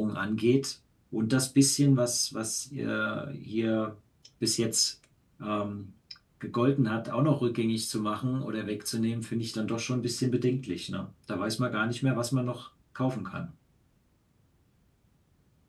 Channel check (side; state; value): both; identical; correlation 1.00